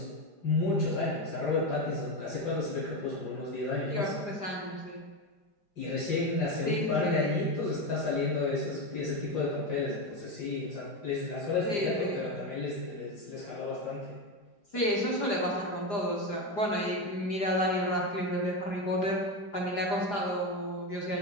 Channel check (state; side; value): late; right; 4.9 ms